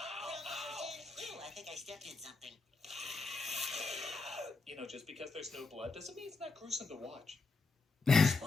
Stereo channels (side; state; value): right; quieter; 3.9 dB